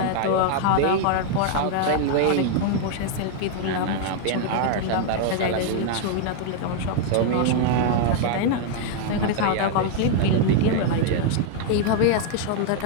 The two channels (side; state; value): both; different; correlation 0.00